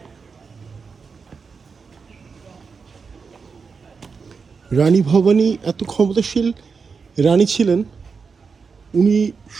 রানী ভবানী এত ক্ষমতাশীল রানী ছিলেন, উনি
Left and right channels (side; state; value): left; quieter; 5.3 dB